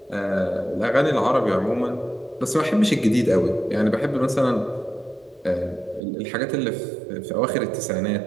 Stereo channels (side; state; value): left; drops out; at 6.0 s